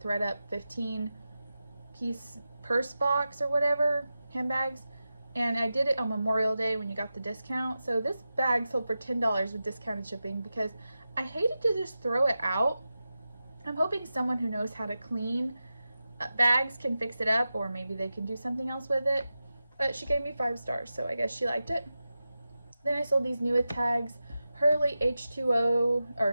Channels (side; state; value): both; inverted; correlation -0.92